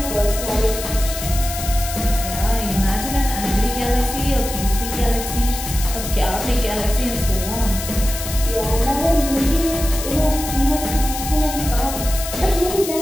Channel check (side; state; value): left; noise; hiss, 7 dB below the sound